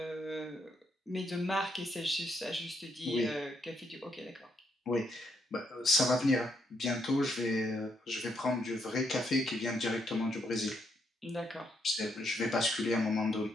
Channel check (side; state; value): both; normal; correlation 0.76